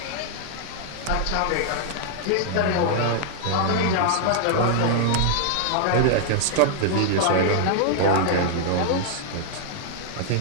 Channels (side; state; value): both; different; correlation 0.00